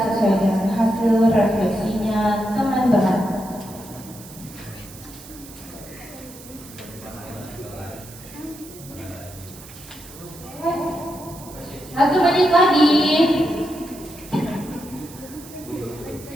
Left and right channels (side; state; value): right; noise; hiss, 18 dB below the sound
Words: sesuai dengan hasil refleksinya teman-teman. Satu menit lagi.